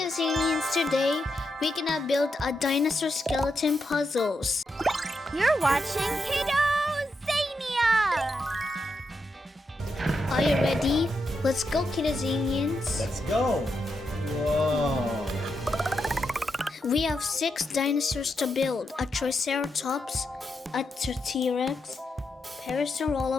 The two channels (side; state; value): both; normal; correlation 0.84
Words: today we're gonna build a dinosaur skeleton puzzles. You're watching Kiddozania! Are you ready? Let's go Kiddozanians. Let's go! Whoa! We have 6 dinosaurs to build. A Triceratops, a T-Rex,